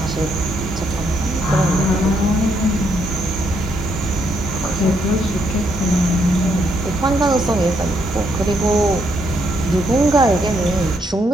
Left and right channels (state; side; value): normal; both; correlation 0.74